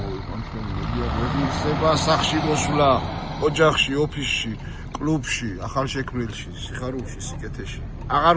თქვენი მედიაგრებისება სახში მოსვლა ოჯახში ოფისში კლუბში ახალშექმნილში სიხარულში სიკეთეში აღარ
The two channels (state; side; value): identical; both; correlation 1.00